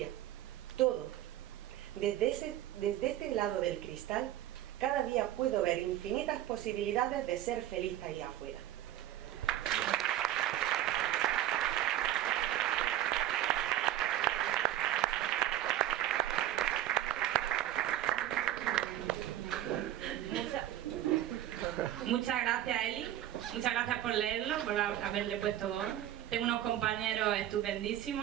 todo. Desde este lado del cristal, cada día puedo ver infinitas posibilidades de ser feliz ahí afuera. Muchas gracias, Eli. Muchas gracias por leerlo, por haberle puesto voz. Tengo unos compañeros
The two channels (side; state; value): left; quieter; 12.7 dB